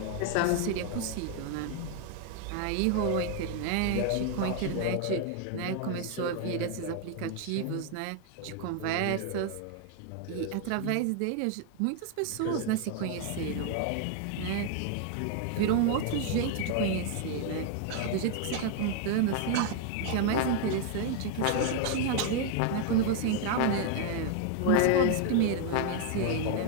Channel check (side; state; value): both; different; correlation 0.00